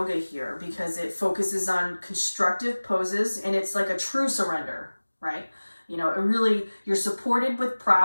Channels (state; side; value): inverted; both; correlation -1.00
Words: here because it focuses on constructive poses, and it's like a true surrender, right? You're supported with